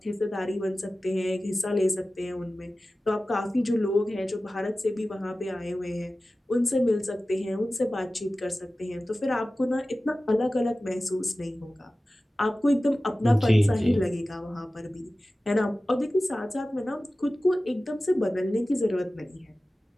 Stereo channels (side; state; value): both; normal; correlation 0.96